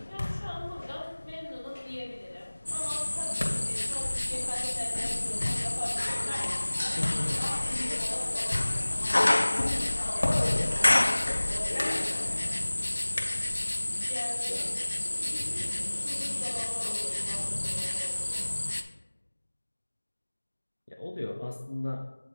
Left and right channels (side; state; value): both; inverted; correlation -1.00